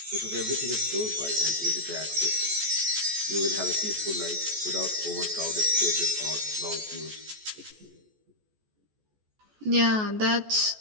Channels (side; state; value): left; late; 14 ms